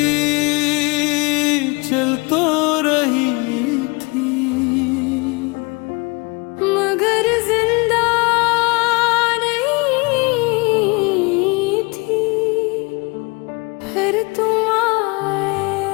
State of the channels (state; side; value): quieter; right; 28.1 dB